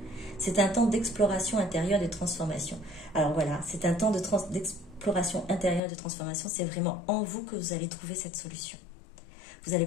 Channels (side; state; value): right; drops out; at 5.8 s